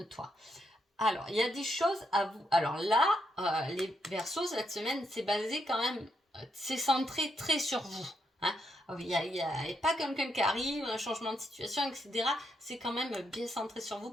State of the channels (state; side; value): normal; both; correlation 0.79